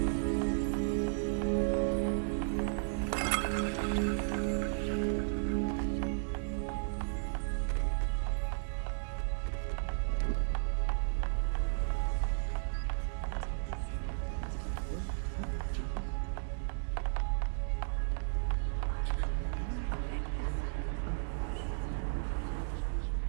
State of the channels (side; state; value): left; silent; digital silence